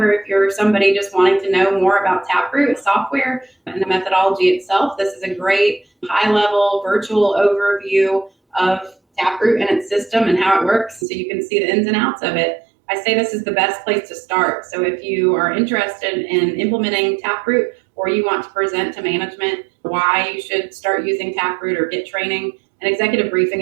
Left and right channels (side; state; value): left; drops out; at 11.1 s